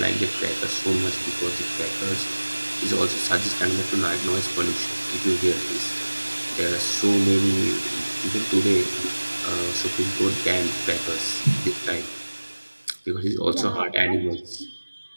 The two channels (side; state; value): both; inverted; correlation -1.00